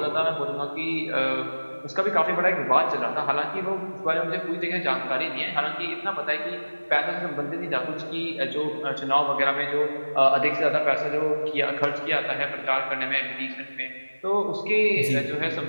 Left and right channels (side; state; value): both; inverted; correlation -1.00